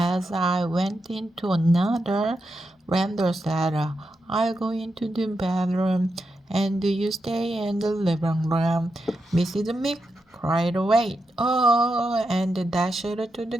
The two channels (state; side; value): normal; both; correlation 0.86